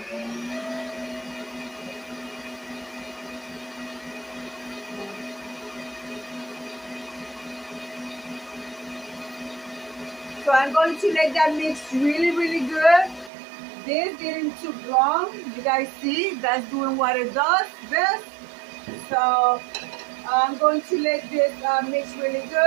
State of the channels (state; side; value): drops out; left; at 13.3 s